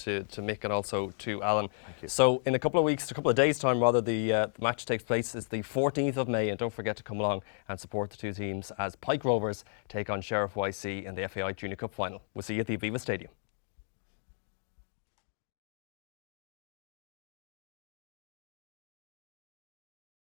Mick and also to Alan. Thank you. So in a couple of days' time rather, the match takes place. It's the 14th of May, and don't forget to come along and support the two teams as Pike Rovers take on Sheriff YC in the FAI Junior Cup Final. We'll see you at the Aviva Stadium.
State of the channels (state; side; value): silent; right; digital silence